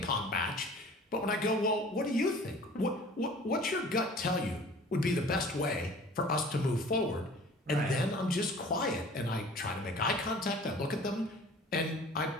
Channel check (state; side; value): normal; both; correlation 0.47